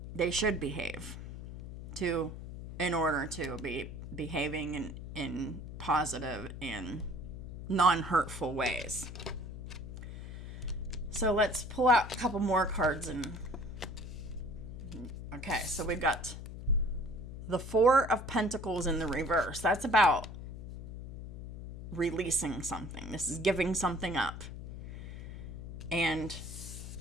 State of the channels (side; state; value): left; noise; hum, 9 dB below the sound